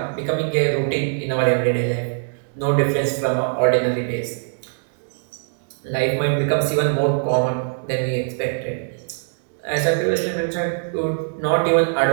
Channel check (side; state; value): left; silent; digital silence